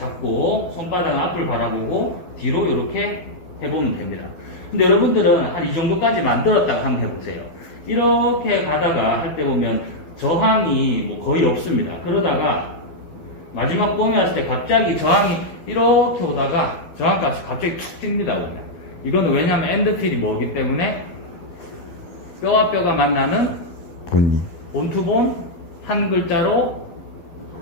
손바닥 앞을 바라보고 뒤로 이렇게 해보면 됩니다. 근데 여러분들은 한 이 정도까지 만들었다고 한번 해보세요. 이렇게 가다가 할 때 보면 저항이 뭐 거의 없습니다. 그러다가 마지막 봄에 왔을 때 갑자기 저항이 이렇게 오다가 저항값이 갑자기 툭 뜁니다. 이거는 왜냐하면 엔드필이 뭐기 때문에 뼈와 뼈가 만나는 본투본 한 글자로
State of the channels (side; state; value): right; late; 12 ms